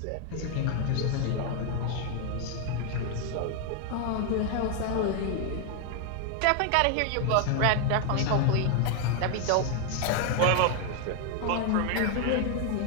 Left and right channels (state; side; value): different; both; correlation 0.01